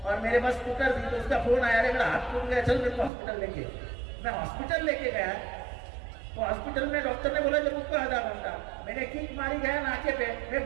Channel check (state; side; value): drops out; left; at 3.1 s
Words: और मेरे पास स्कूटर थी, तो उसका फोन आया, मेरा हाथ टूट गया, चल मेरे को हॉस्पिटल लेके। मैं हॉस्पिटल लेके गया, तो हॉस्पिटल में डॉक्टर ने बोला जब उसको आधा घंटा, मैंने किक मारी गया नाके पे, मैं